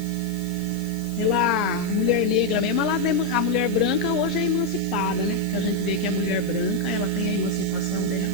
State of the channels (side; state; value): left; noise; hiss, 19 dB below the sound